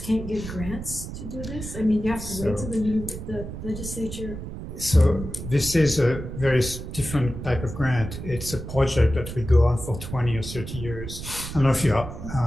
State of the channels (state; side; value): noise; right; rumble, 9 dB below the sound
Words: can't get grants to do this? I mean, you have to wait till the legislature. So this is a very different type of grant. It's a project that will go on for 20 or 30 years. I don't know if you are